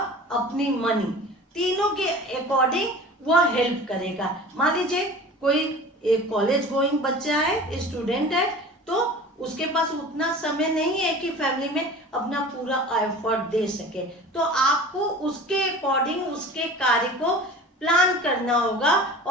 अपनी मनी, तीनों के अकॉर्डिंग वह हेल्प करेगा। मान लीजिए कोई एक कॉलेज गोइंग बच्चा है, स्टूडेंट है, तो उसके पास उतना समय नहीं है कि फैमिली में अपना पूरा एफर्ट दे सके, तो आपको उसके अकॉर्डिंग उसके कार्य को प्लान करना होगा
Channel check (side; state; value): both; normal; correlation 0.39